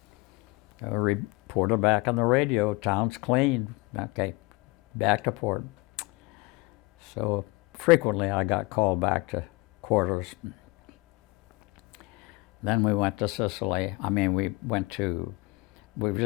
A reporter back on the radio, "Town's clean." Okay, back to port. So frequently I got called back to quarters. Then we went to Sicily. We were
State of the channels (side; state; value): right; quieter; 23.8 dB